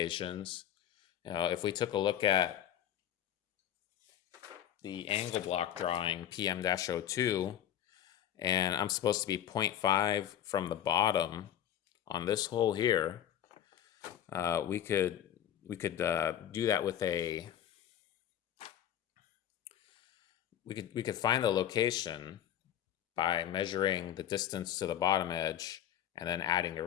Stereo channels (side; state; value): right; quieter; 10.7 dB